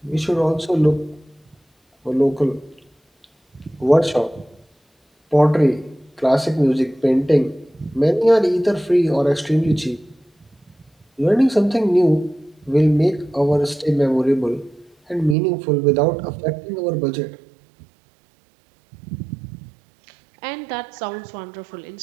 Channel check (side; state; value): left; drops out; at 15.4 s